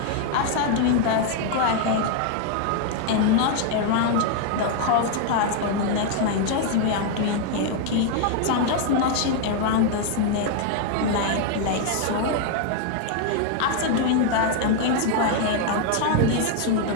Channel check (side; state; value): both; different; correlation 0.00